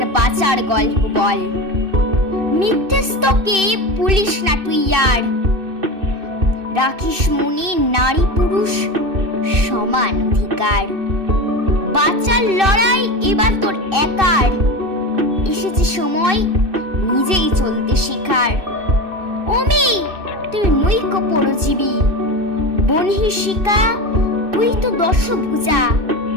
বাঁচার গল্প বল। মিথ্যেস্তকে পুলিশ না তুই আর, রাখিস মনে নারী পুরুষ সমান অধিকার। বাঁচার লড়াই এবার তোর একার, এসেছে সময় নিজেই চলতে শেখার। ও মেয়ে তুই নৈক পরজীবী, বনহিষিকা তুই তো দশভুজা।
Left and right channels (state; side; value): late; left; 2.6 ms